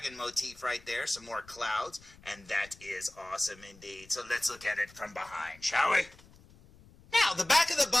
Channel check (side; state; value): left; noise; rumble, 24 dB below the sound